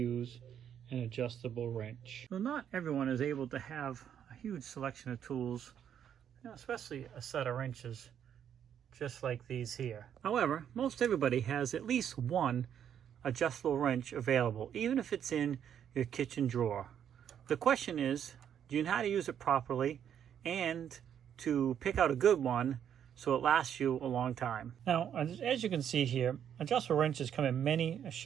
an adjustable wrench. Well, not everyone is able to have a huge selection of tools, especially a set of wrenches just like these here. However, most everybody has at least one adjustable wrench available, even if it's in your kitchen drawer. The question is, do you know how to use it properly and to pick out a good one so it lasts you a long time? Now, as you can see here, adjustable wrenches come in many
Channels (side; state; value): left; quieter; 9.1 dB